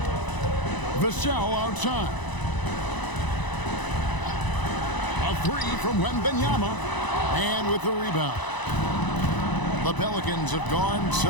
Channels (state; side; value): late; right; 1.0 ms